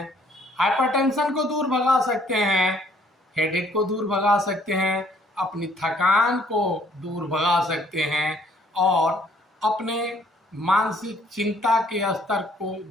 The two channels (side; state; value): both; normal; correlation 0.63